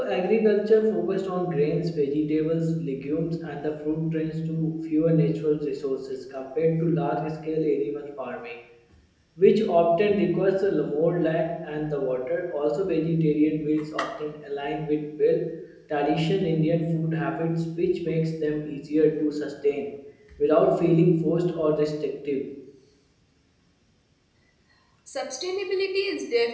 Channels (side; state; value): both; identical; correlation 1.00